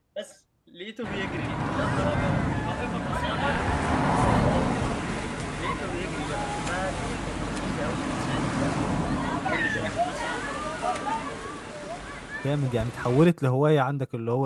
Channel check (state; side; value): identical; both; correlation 1.00